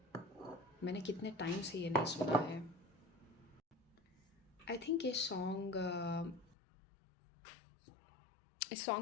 मैंने कितने टाइम से ये नहीं सुना है। आई थिंक ये सॉन्ग इस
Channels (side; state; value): right; drops out; at 6.6 s